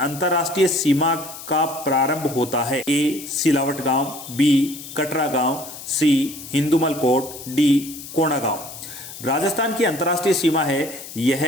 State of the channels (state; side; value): noise; left; hiss, 13 dB below the sound